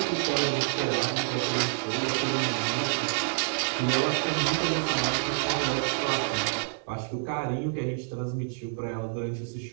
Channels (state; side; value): silent; left; 59 dB below the other